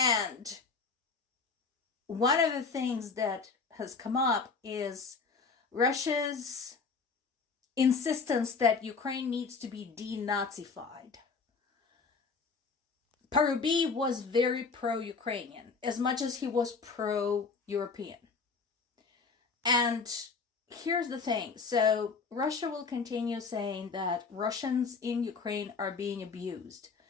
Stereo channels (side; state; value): right; quieter; 4.8 dB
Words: one of the things that has come up is Russia's insistence that Ukraine needs to be denazified. Parubi was very pro-Ukrainian, as much as he was pro-European. And here's the thing. So Russia will continue saying that Russians in Ukraine are being abused.